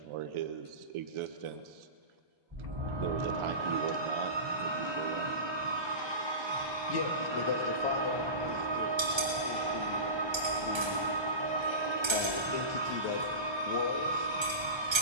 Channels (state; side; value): late; left; 1.3 ms